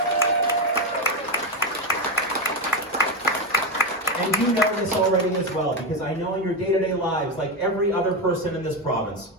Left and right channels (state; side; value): normal; both; correlation 0.12